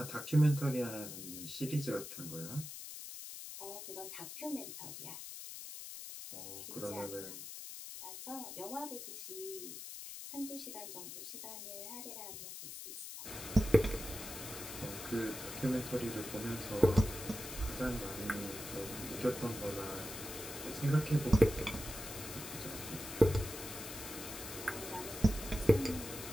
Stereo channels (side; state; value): left; noise; hiss, 9 dB below the sound